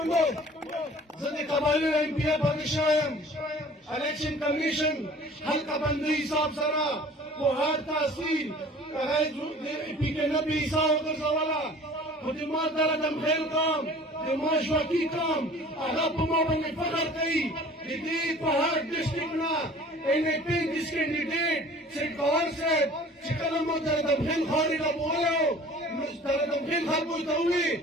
زه د قبایلو ایم پی باندې شوی یم. الیکشن کمیشن حلقه بندي حساب سره په هر تحصیل هغه د پی کې نه به حساب وګرځوله خو د ما دله دمخیل قوم د ما ژواکي قوم هغه په ما باندې فخر کوي. د دې په هر ډسټرکټ نه NA35 کینډیډیټ سیټ گور صاحب چې کله مو دله دمخیل خاورې ته بولی نو دله دمخیل خلکو ته ووایي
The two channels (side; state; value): both; normal; correlation 0.47